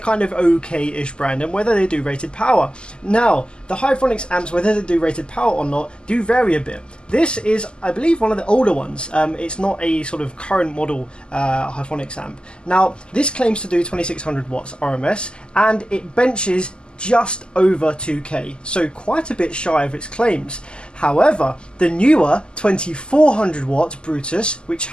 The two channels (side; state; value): right; late; 0.049 ms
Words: of okay-ish brand, and whether they do rated power. Now, the Hifonics amps, whether they do rated power or not, do vary a bit. This is, I believe, one of the older ones. It's not a sort of current model Hifonics amp. Now, this claims to do 2600 watts RMS, and it benches just over 2K, so quite a bit shy of its claims. However, the newer 2400 watt Brutus, which